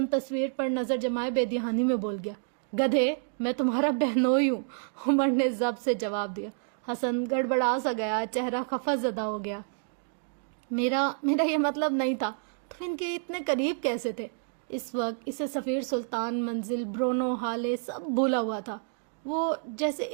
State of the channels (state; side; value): silent; left; digital silence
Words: تصویر پر نظر جمائے بے دہانی میں بول گیا۔ گدھے، میں تمہارا بہنوئی ہوں، عمر نے ضبط سے جواب دیا۔ حسن گڑبڑا سا گیا، چہرہ خفا زدہ ہو گیا۔ میرا یہ مطلب نہیں تھا۔ تم ان کے اتنے قریب کیسے تھے؟ اس وقت اسے سفیر، سلطان، منزل، برونو، حالے سب بھولا ہوا تھا۔ وہ جیسے